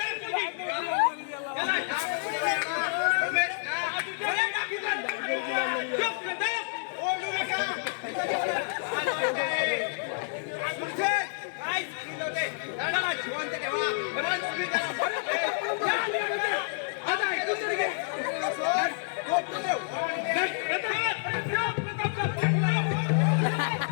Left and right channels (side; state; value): right; silent; digital silence